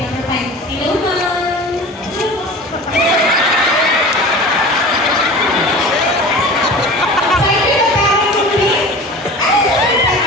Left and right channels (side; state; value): both; normal; correlation 0.36